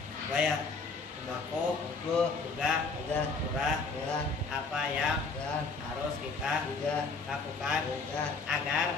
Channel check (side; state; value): right; quieter; 4.2 dB